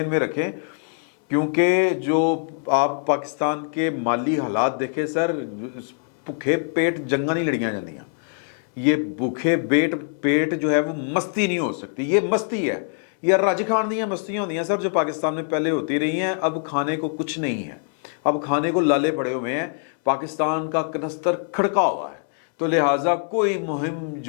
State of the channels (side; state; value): right; silent; 63 dB below the other